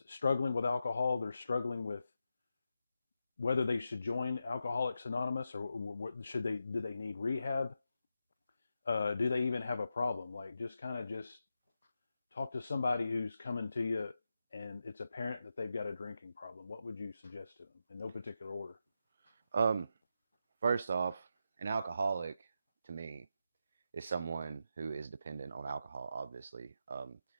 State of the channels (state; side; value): inverted; both; correlation -0.87